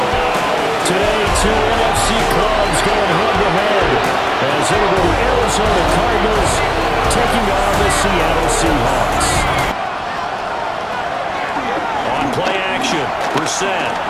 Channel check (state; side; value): identical; both; correlation 1.00